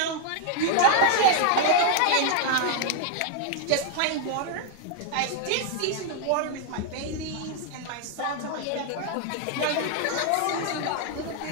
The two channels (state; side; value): different; both; correlation 0.00